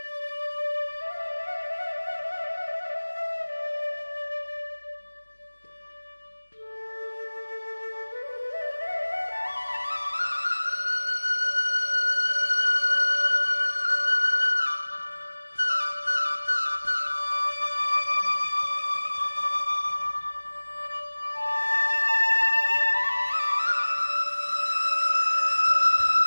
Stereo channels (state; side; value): inverted; both; correlation -1.00